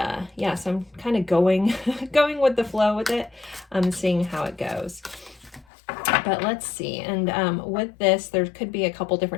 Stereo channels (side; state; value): right; drops out; at 5.7 s